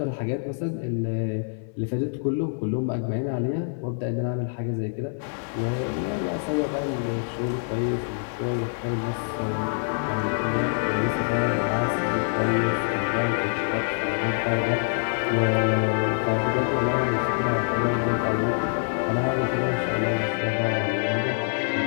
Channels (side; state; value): right; silent; 61 dB below the other